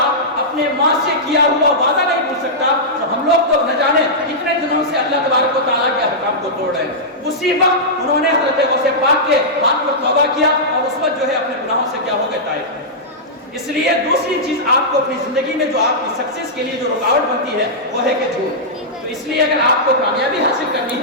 اپنے ماں سے کیا ہوا وعدہ نہیں بھول سکتا، تو ہم لوگ تو نہ جانے کتنے دنوں سے اللہ تبارک و تعالیٰ کے احکام کو توڑ رہے ہیں۔ اسی وقت انہوں نے حضرت غوث پاک کے ہاتھ پر توبہ کیا اور اس وقت جو ہے اپنے گناہوں سے کیا ہو گئے طائب۔ اس لیے دوسری چیز آپ کو اپنی زندگی میں جو آپ کی سکسیس کے لیے جو رکاوٹ بنتی ہے وہ ہے کہ جھوٹ۔ تو اس لیے اگر آپ کو کامیابی حاصل کرنی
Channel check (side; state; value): both; normal; correlation -0.12